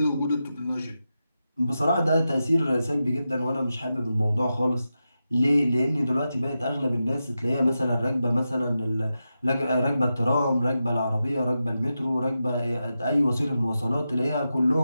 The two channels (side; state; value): both; inverted; correlation -0.90